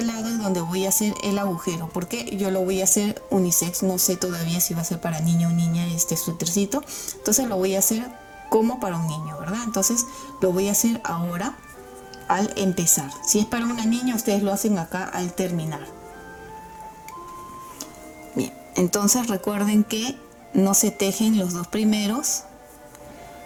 lado es donde voy a hacer el agujero, porque yo lo voy a hacer unisex, no sé todavía si va a ser para niño o niña este suétercito. Entonces lo voy a hacer como para un niño, ¿verdad? Entonces lo voy a hacer ahora al empezar. Si es para una niña, ustedes lo hacen acá al terminar. Bien, entonces recuerden que no se tejen los 2 primeros.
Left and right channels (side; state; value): both; identical; correlation 1.00